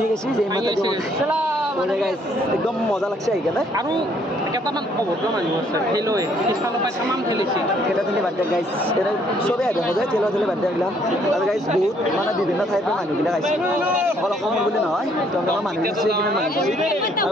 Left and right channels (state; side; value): normal; both; correlation 0.66